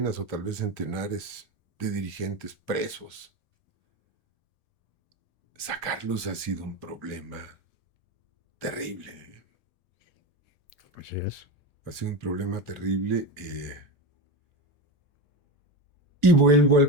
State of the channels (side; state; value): left; late; 1.7 ms